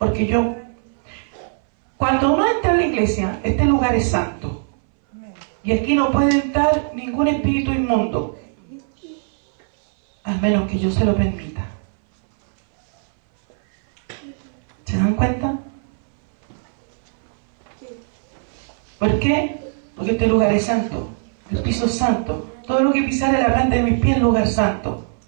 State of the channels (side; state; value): left; silent; 62 dB below the other